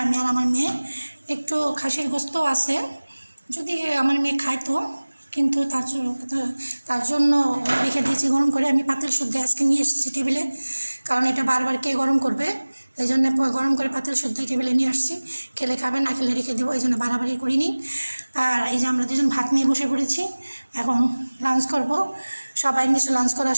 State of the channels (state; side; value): inverted; both; correlation -1.00